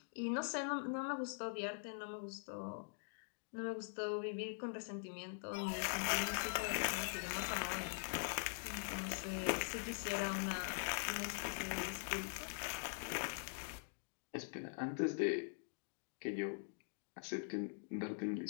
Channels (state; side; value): silent; right; digital silence